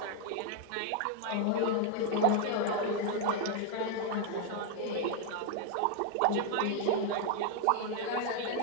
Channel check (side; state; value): both; different; correlation 0.00